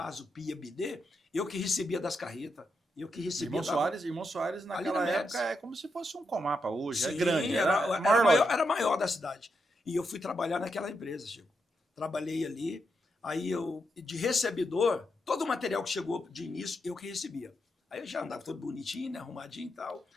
pia, bidê. Eu que recebia das carretas. Eu que recebia. Irmão Soares naquela época é como se fosse um Comapa hoje. Sim, é grande. Era maior da cidade. E eu fui trabalhar naquela empresa, Chico. Trabalhei ali. Aí eu, de recebidor, todo o material que chegou de início, eu que recebia. Aí eu já andava todo bonitinho, né, arrumadinho e tal.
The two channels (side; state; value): both; normal; correlation 0.83